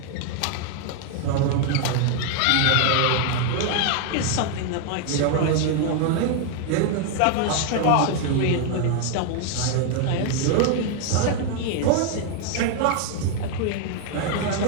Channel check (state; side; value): different; both; correlation 0.00